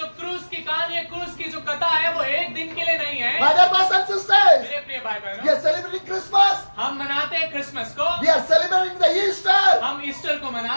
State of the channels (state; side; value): inverted; both; correlation -1.00